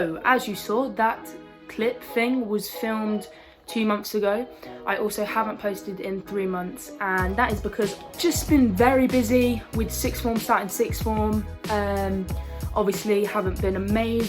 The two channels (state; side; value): identical; both; correlation 1.00